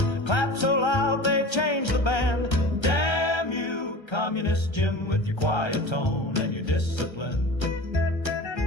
and clapped so loud they changed the band. Damn you, communist Jim, with your quiet tone and your discipline.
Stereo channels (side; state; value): right; late; 1.3 ms